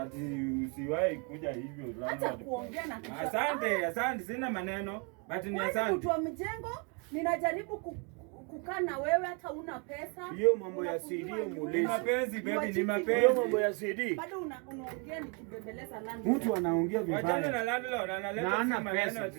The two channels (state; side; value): quieter; left; 33.9 dB